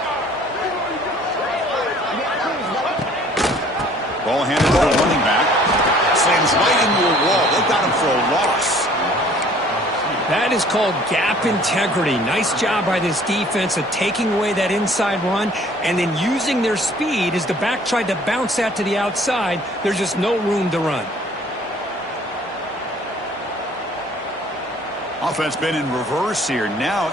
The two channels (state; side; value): normal; both; correlation 0.55